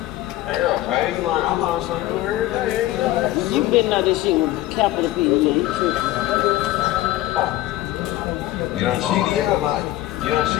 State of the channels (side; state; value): right; quieter; 15.9 dB